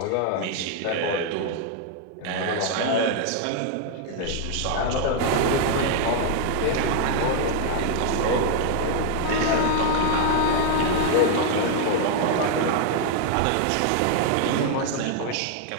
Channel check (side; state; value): both; different; correlation 0.00